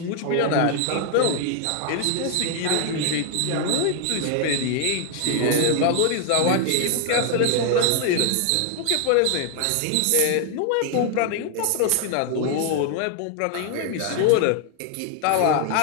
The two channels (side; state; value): both; different; correlation 0.00